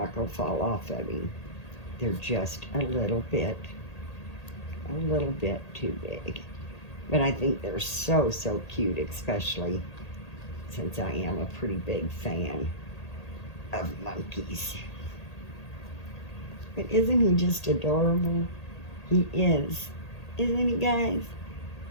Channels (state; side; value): late; right; 1.8 ms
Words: going to fall off of him. They're just a little bit too big. But I think they're so, so cute, especially since I am a pretty big fan of monkeys. But isn't he just adorable? He is. Isn't he, guys?